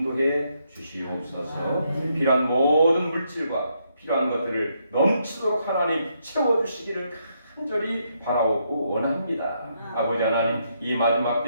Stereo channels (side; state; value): both; inverted; correlation -0.77